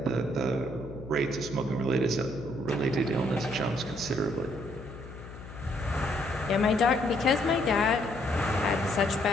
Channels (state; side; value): noise; left; hum, 14 dB below the sound